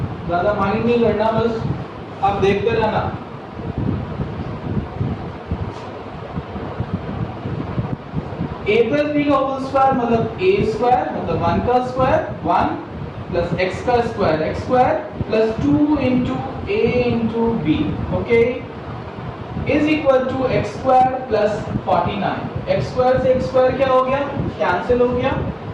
ज़्यादा माइंड नहीं करना, बस आप देखते रहना। a प्लस बी का होल स्क्वायर मतलब a स्क्वायर मतलब 1 का स्क्वायर 1 प्लस x का square x square plus 2 into a into b, okay, is equal to X square plus 49। X square से एक्स स्क्वायर क्या हो गया, कैंसिल हो गया।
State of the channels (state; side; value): identical; both; correlation 1.00